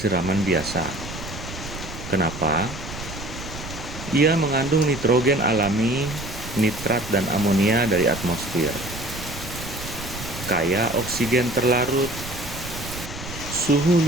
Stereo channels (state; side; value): noise; right; rumble, 11 dB below the sound